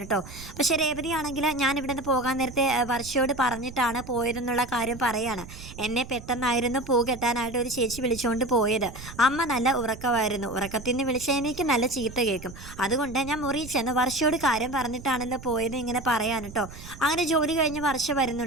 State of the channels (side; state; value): right; noise; rumble, 14 dB below the sound